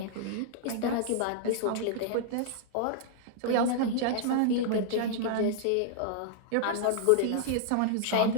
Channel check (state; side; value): different; both; correlation -0.01